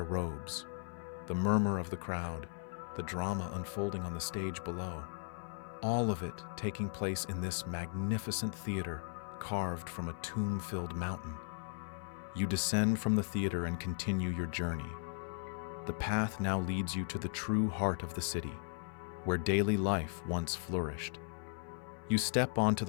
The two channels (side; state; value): right; silent; 53 dB below the other